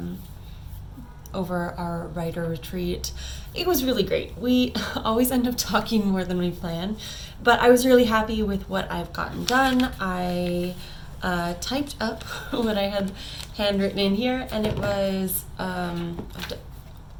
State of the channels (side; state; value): both; identical; correlation 1.00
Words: over our writer retreat. It was really great. We always end up talking more than we plan, but I was really happy with what I've gotten done. I typed up what I had handwritten in here, and it was,